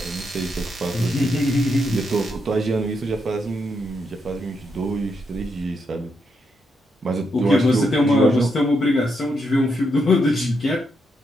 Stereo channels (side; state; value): both; normal; correlation 0.80